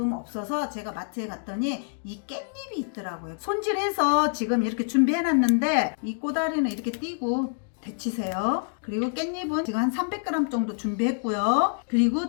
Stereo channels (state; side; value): silent; right; digital silence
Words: 없어서 제가 마트에 갔더니 이 깻잎이 있더라고요. 손질해서 지금 이렇게 준비해 놨는데 이 꼬다리는 이렇게 띄고 데치세요. 그리고 깻잎은 지금 한 300g 정도 준비했고요.